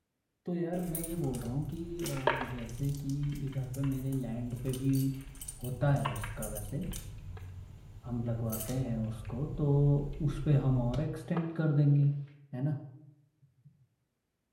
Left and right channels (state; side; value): identical; both; correlation 1.00